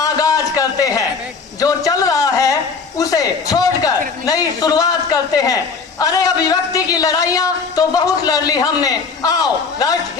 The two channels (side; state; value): right; quieter; 5.0 dB